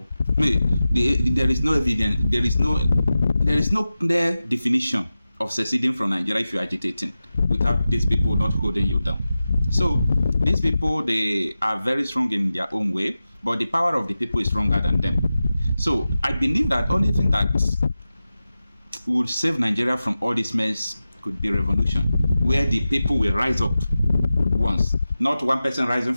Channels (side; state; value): both; inverted; correlation -0.94